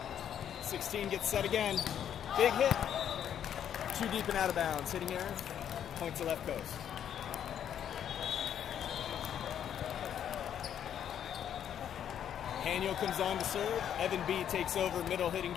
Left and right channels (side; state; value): right; quieter; 9.5 dB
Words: 16 gets set again. Big hit. Too deep and out of bounds. Hitting error. Point to left coast. Haniel comes on to serve. Evan B takes over middle hitting